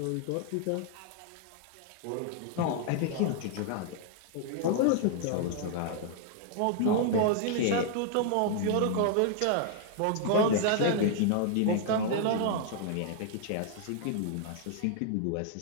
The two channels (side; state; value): both; different; correlation 0.00